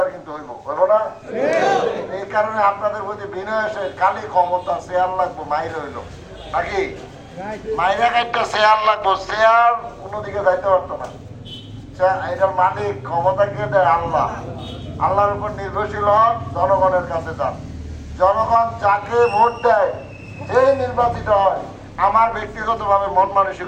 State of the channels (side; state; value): both; identical; correlation 1.00